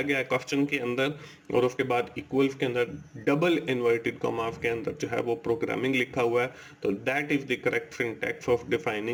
गया है क्वेश्चन के अंदर, और उसके बाद इक्वल्स के अंदर डबल इन्वर्टेड कॉमास के अंदर जो है वो प्रोग्रामिंग लिखा हुआ है। तो that is the correct syntax of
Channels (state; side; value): identical; both; correlation 1.00